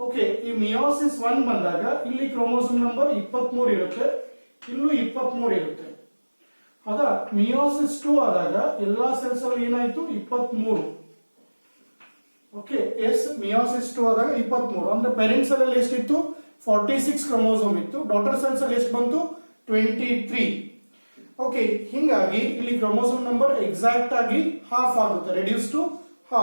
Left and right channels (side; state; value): both; inverted; correlation -1.00